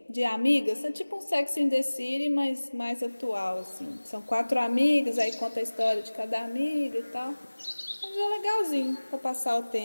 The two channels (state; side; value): inverted; both; correlation -1.00